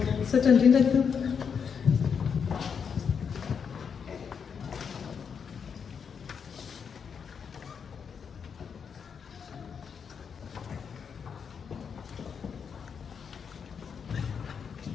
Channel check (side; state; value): right; quieter; 6.6 dB